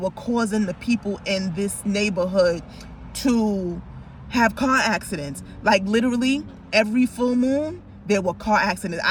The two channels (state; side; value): identical; both; correlation 1.00